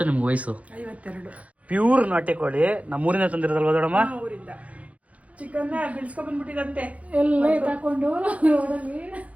ನಿಮ್ಗೆ ವಯಸ್ಸು? 52. ಪ್ಯೂರ್ ನಾಟಿ ಕೋಳಿ ನಮ್ಮೂರಿನ ತಂದಿರೋದಲ್ವ ದೊಡಮ್ಮ? ಊರಿಂದ ಚಿಕನ್ ಬಿಡಿಸ್ಕೊಂಡ್ ಬಂದ್ಬಿಟ್ಟಿದಂತೆ ಎಲ್ಲ ತಕೊಂಡು ರೋಡಲ್ಲಿ.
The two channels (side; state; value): left; late; 0.066 ms